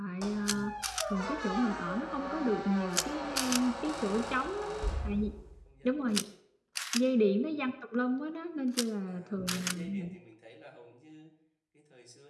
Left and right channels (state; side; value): identical; both; correlation 1.00